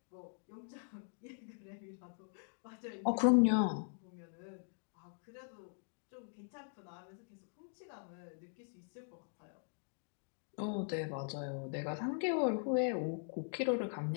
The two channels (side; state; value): right; silent; digital silence